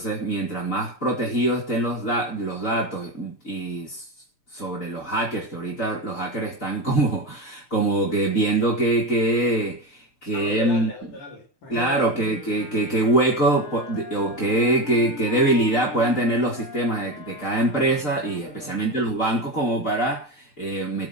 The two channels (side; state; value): right; late; 6.7 ms